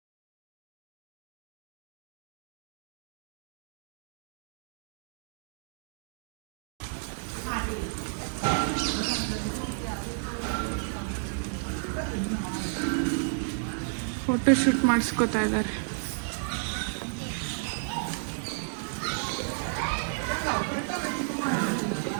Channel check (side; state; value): left; silent; digital silence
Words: ಫೋಟೋ ಶೂಟ್ ಮಾಡಿಸ್ಕೋತಾ ಇದ್ದಾರೆ.